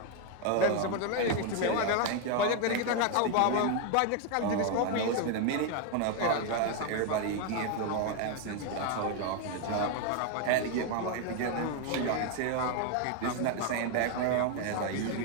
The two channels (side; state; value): both; different; correlation 0.01